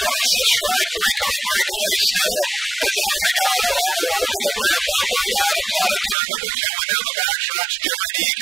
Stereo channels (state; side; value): drops out; left; at 6.2 s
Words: the stripe. 3-car breakaway still as our Renegado all over the rear bumper of Adams out of turn number 2 and down the backstretch. Jerry D